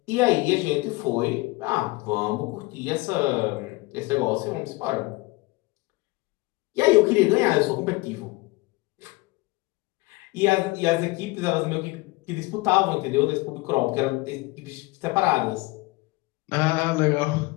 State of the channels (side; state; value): right; quieter; 22.8 dB